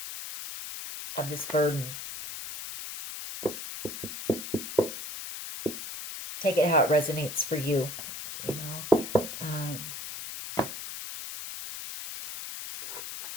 of this burden. Take it how it resonates for you, you know.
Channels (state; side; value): noise; left; hiss, 8 dB below the sound